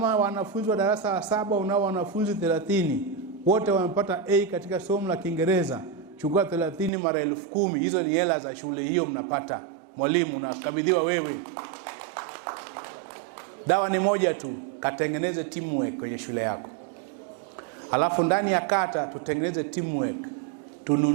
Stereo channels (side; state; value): left; drops out; at 6.9 s